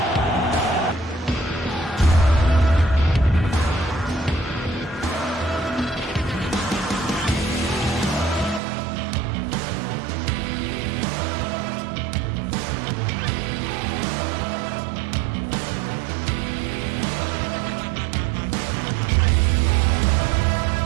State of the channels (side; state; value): left; drops out; at 8.6 s